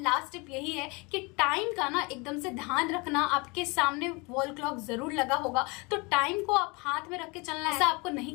लास्ट टिप यही है कि टाइम का ना एकदम से ध्यान रखना। आपके सामने वॉल क्लॉक जरूर लगा होगा, तो टाइम को आप हाथ में रख के चलना है। ऐसा आपको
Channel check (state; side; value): quieter; right; 27.7 dB